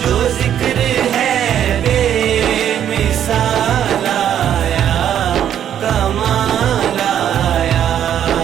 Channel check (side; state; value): left; quieter; 9.9 dB